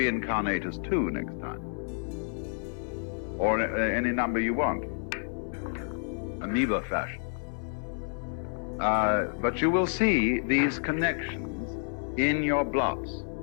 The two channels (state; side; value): silent; right; 58 dB below the other